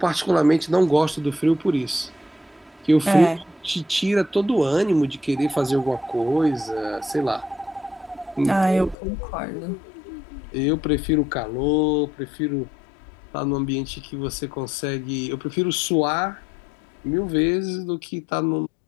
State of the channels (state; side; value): drops out; right; at 9.0 s